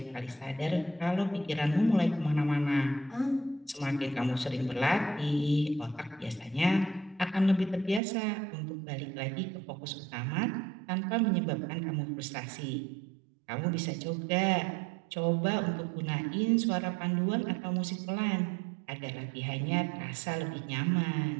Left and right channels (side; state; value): left; drops out; at 8.0 s